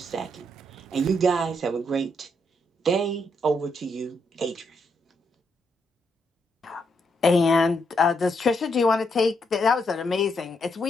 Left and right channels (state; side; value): normal; both; correlation 0.78